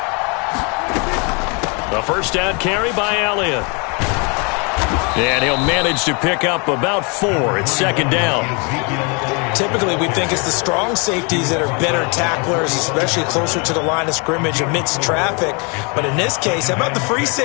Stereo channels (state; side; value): quieter; right; 32.9 dB